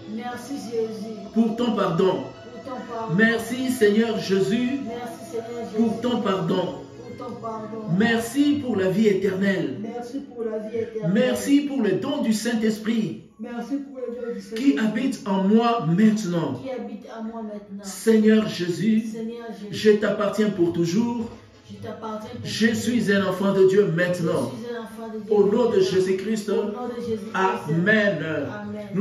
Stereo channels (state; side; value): identical; both; correlation 1.00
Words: Merci Jésus pour ton pardon. pour ton pardon. Merci Seigneur Jésus Merci Seigneur Jésus pour ton pardon. pour ton pardon. Merci pour la vie éternelle. Merci pour la vie éternelle. Merci pour le don du Saint-Esprit Merci pour le don du Seigneur qui habite en moi maintenant. qui habite à moi maintenant. Seigneur Jésus, Seigneur Jésus, je t'appartiens pour toujours. je t'appartiens. Je suis un enfant de Dieu maintenant. Je suis un enfant de Dieu. Au nom de Jésus-Christ, Au nom de Jésus-Christ. Amen. Amen.